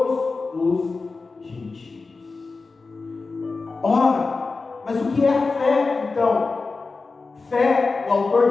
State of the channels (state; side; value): quieter; right; 4.0 dB